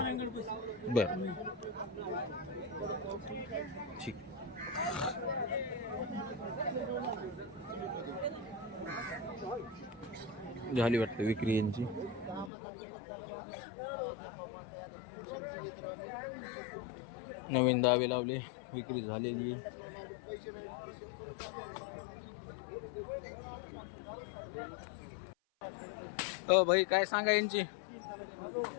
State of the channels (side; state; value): right; drops out; at 12.5 s